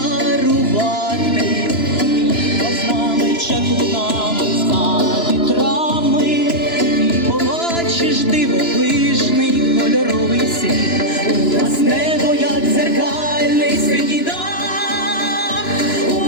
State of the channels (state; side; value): late; right; 2.9 ms